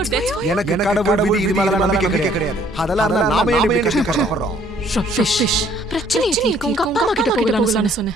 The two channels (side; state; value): both; normal; correlation 0.61